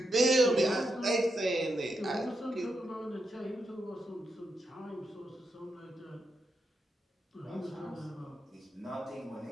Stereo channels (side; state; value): both; normal; correlation 0.84